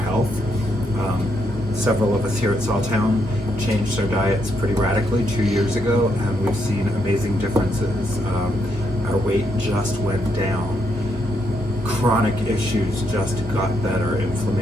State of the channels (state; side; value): normal; both; correlation 0.78